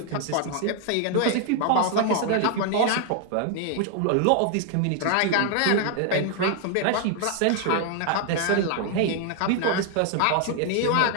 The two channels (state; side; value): different; both; correlation 0.00